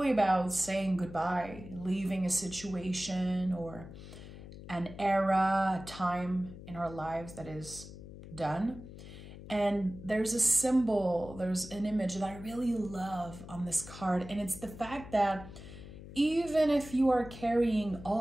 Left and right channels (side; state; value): left; noise; hum, 14 dB below the sound